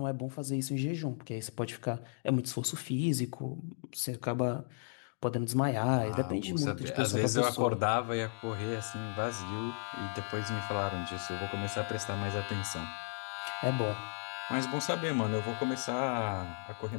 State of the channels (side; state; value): right; silent; digital silence